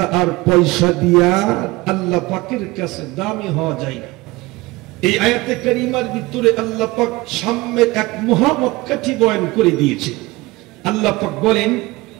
আর পয়সা দিয়া আল্লাহ পাকের কাছে দামি হওয়া যায় না। এই আয়াতে কারিমার ভিতরে আল্লাহ পাক সাম্যের এক মহামক্কাঠি বয়ান করে দিয়েছে। আল্লাহ পাক বলেন,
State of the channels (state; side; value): quieter; left; 21.2 dB